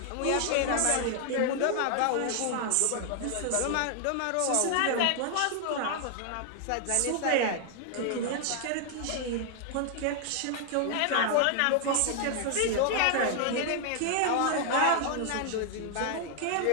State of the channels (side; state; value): both; different; correlation 0.00